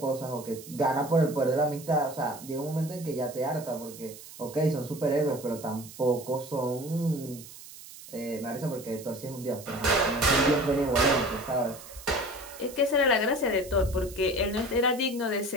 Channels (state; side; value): noise; right; hiss, 16 dB below the sound